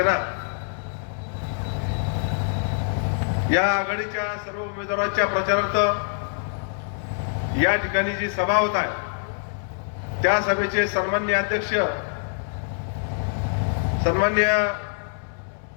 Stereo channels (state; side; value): silent; right; 62 dB below the other